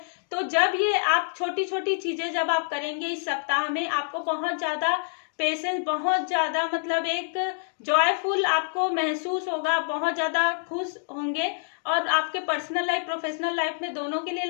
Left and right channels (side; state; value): right; silent; digital silence